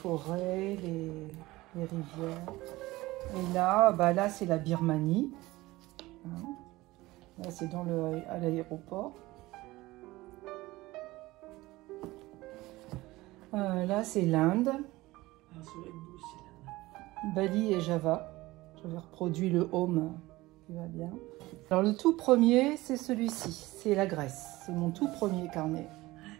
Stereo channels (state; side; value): quieter; left; 19.2 dB